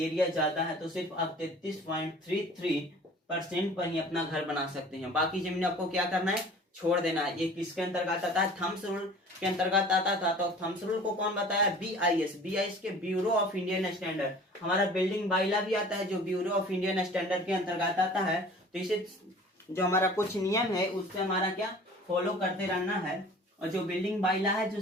ज्यादा है तो सिर्फ आप 33.33% पर ही अपना घर बना सकते हैं। बाकी जमीन आपको क्या करना है? छोड़ देना है। ये किसके अंतर्गत आता है? थम्स रूल के अंतर्गत आता था। तो थम्स रूल को कौन बताया? BIS के ब्यूरो ऑफ इंडियन स्टैंडर्ड। हमारा बिल्डिंग बाइला भी आता है जो ब्यूरो ऑफ इंडियन स्टैंडर्ड के अंतर्गत आता है। तो इसे जो हमारा कुछ नियम है उससे हमारा क्या फॉलो करते रहना है। और जो बिल्डिंग बाइला है जो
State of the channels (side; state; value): both; normal; correlation 0.46